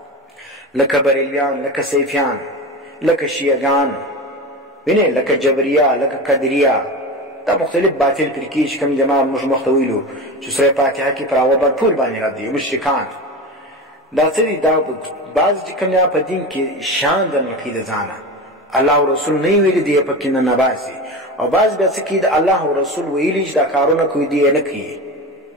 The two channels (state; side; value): normal; both; correlation 0.26